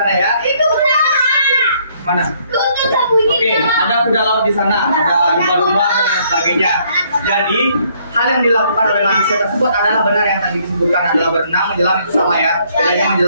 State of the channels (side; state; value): both; inverted; correlation -0.67